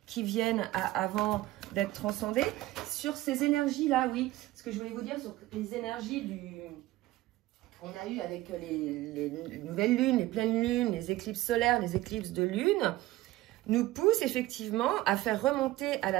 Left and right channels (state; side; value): quieter; left; 17.0 dB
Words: qui viennent avant d'être transcendées. Sur ces énergies-là, oui, ce que je voulais vous dire sur les énergies qu'on a eu avec les nouvelles lunes, les pleines lunes, les éclipses solaires, les éclipses de lune, nous pousse effectivement à faire remonter à